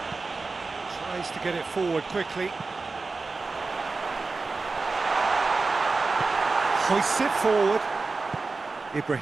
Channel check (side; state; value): left; quieter; 3.9 dB